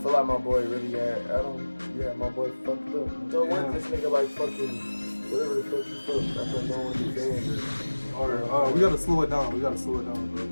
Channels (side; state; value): both; inverted; correlation -1.00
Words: feel like my boy really had Adam. Yeah, my boy fucked up. So what this nigga like fucking whatever the fuck he fucked. That's what going with his band. Alright, we gotta slow it down. Bro.